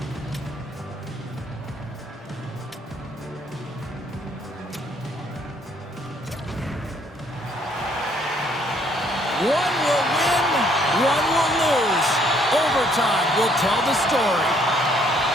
One will win, one will lose. Overtime will tell the story.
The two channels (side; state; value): both; normal; correlation 0.66